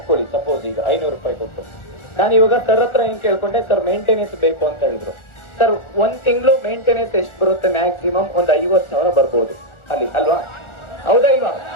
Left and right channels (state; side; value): late; right; 1.4 ms